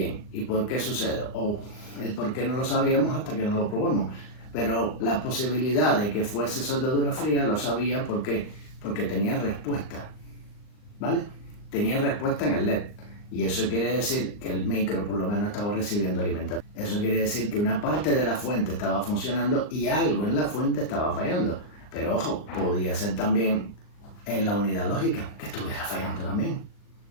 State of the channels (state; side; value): late; right; 39 ms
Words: ¿y por qué sucede? O el por qué no lo sabíamos hasta que no lo probamos. Pero la posibilidad de que fuese soldadura fría lo sabía porque tenía respuesta, ¿vale? Tenía respuesta en el LED. Y eso quiere decir que el micro por lo menos estaba recibiendo alimentación. Eso quiere decir que una parte de la fuente estaba funcionando y algo en la fuente estaba fallando. Pero ojo, podía ser también en la unidad lógica que estuviera fallando también,